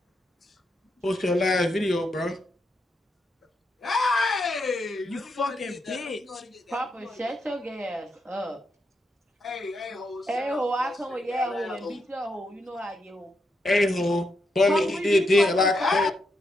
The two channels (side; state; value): both; normal; correlation 0.81